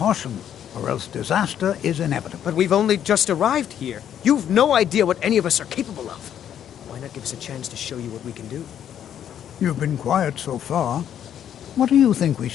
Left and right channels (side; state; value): right; quieter; 9.8 dB